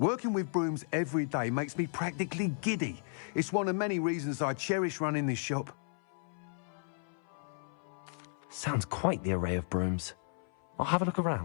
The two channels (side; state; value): right; silent; 55 dB below the other